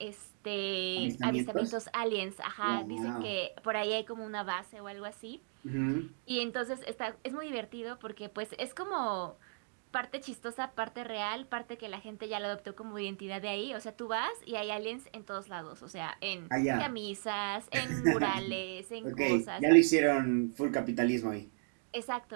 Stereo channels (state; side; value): silent; left; 54 dB below the other